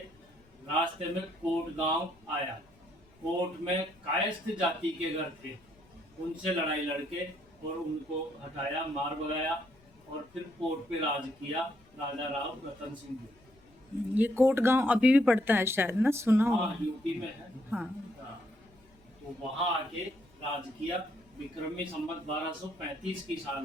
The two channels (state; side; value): noise; left; rumble, 29 dB below the sound